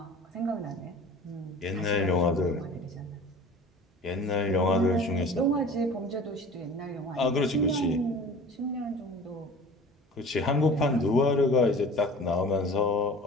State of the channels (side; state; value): both; normal; correlation 0.42